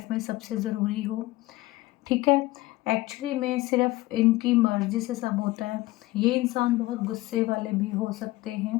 में सबसे ज़रूरी हो, ठीक है। एक्चुअली में सिर्फ इनकी मर्ज़ी से सब होता है। ये इंसान बहुत गुस्से वाले भी हो सकते हैं,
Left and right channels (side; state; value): right; quieter; 19.0 dB